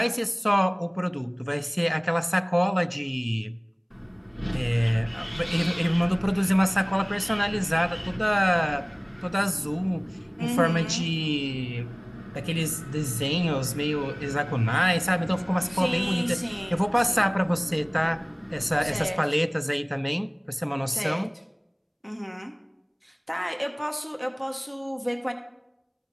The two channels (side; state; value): both; identical; correlation 1.00